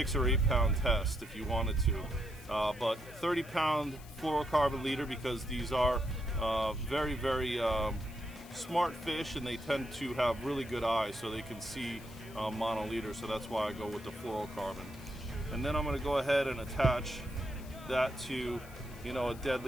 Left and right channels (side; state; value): left; noise; hiss, 20 dB below the sound